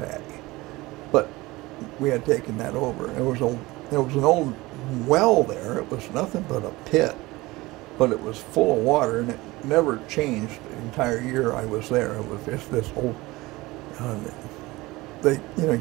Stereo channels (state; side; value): quieter; left; 20.6 dB